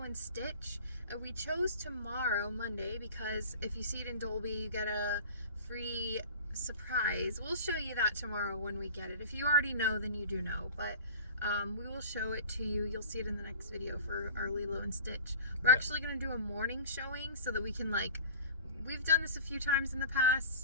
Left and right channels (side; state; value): both; inverted; correlation -0.38